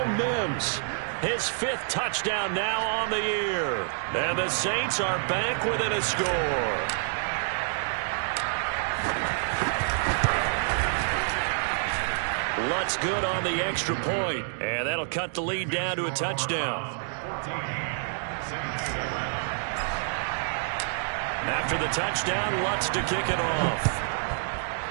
Mims, his 5th touchdown now on the year. And the Saints are back within a score. Lutz good on the extra point. And that'll cut the lead down to a touchdown. After the touchdown, Lutz to kick it off.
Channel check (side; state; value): left; silent; digital silence